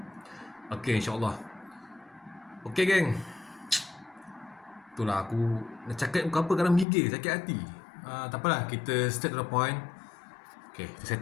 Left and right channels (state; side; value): drops out; right; at 6.9 s